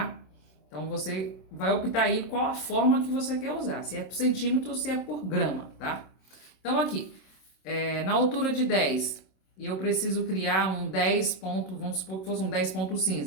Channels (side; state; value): right; late; 27 ms